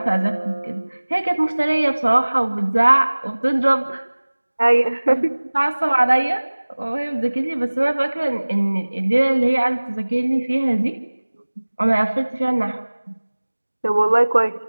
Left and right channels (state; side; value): inverted; both; correlation -1.00